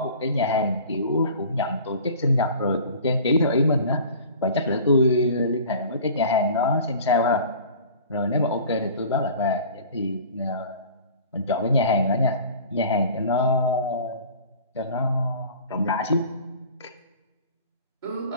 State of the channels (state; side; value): inverted; both; correlation -0.43